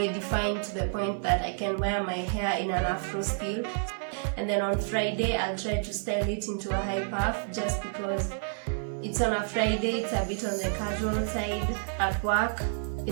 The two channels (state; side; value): silent; left; digital silence